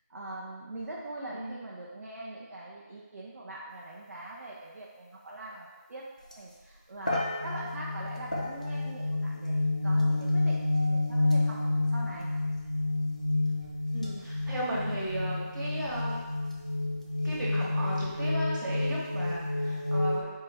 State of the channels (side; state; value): both; inverted; correlation -0.92